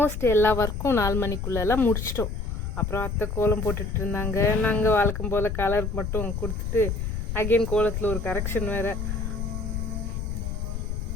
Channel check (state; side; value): noise; left; rumble, 4 dB below the sound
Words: எல்லா ஒர்க்கும் 4 மணிக்குள்ளெல்லாம் முடிச்சிட்டோம். அப்புறம் அத்தை கோலம் போட்டுட்டு இருந்தாங்க. நாங்கள் வழக்கம் போல் கலர் மட்டும் கொடுத்துட்டு அகெயின் கோலத்தில் ஒரு கரெக்ஷன் வேறு.